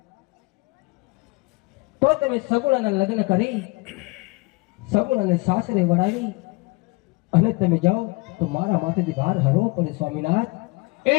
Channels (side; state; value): right; quieter; 25.9 dB